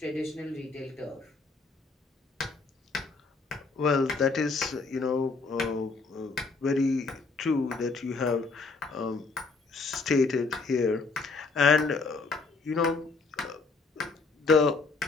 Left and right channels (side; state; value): right; quieter; 4.1 dB